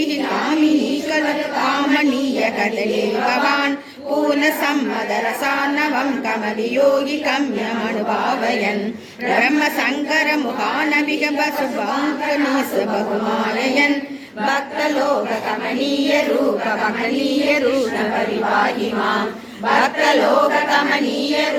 कामिनी खलु कामनीय कदली भवान् पूर्णसम्मदरसान्नवं कमवियोगिकम्यमनुभावयन् ब्रह्मशङ्करमुखानभिः वसुभङ्कनीस बहुमाययन् भक्तलोककमनीय रूप भक्तनीय रूप परिपाहि माम् भक्तलोककमनीय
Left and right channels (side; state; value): both; identical; correlation 1.00